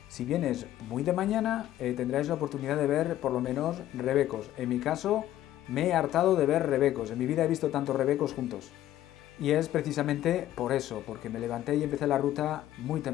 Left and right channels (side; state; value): right; quieter; 13.2 dB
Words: Si vienes muy de mañana, tendráis la oportunidad de ver por lo menos rebecos. En mi caso, me he hartado de ver rebecos. En mi vida he visto tantos rebecos juntos. Y es precisamente por eso, porque me levanté y empecé la ruta muy